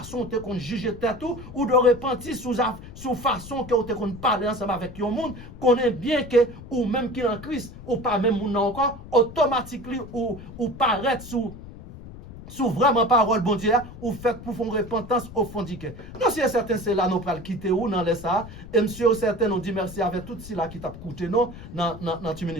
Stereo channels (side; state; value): left; noise; rumble, 14 dB below the sound